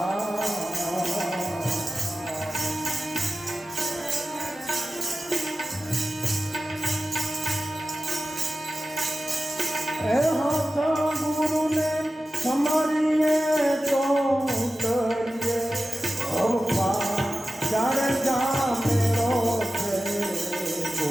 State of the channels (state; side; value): normal; both; correlation 0.94